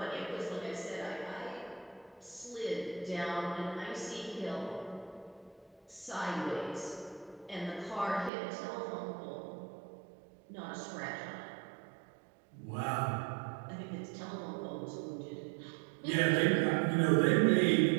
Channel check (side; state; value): left; drops out; at 8.3 s